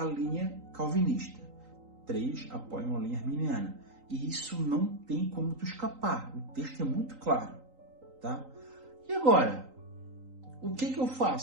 linha calvinista, 3 apoiam a linha arminiana. E isso não tem como tu escapar, o texto é muito claro, tá? E agora, o que eu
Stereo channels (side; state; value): left; late; 3.9 ms